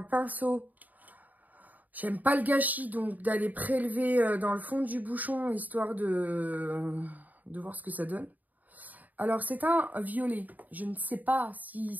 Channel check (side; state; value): left; late; 0.081 ms